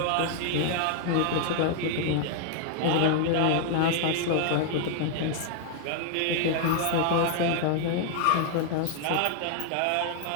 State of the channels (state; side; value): different; both; correlation 0.00